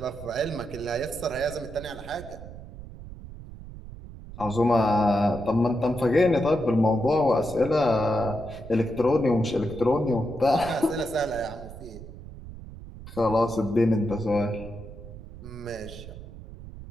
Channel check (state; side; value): noise; right; rumble, 14 dB below the sound